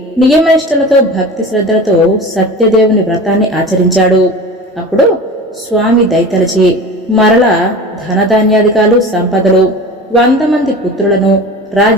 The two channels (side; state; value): both; normal; correlation 0.34